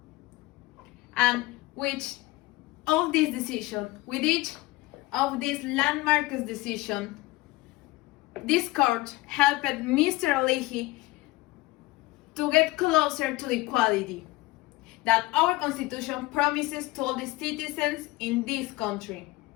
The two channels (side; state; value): right; quieter; 19.9 dB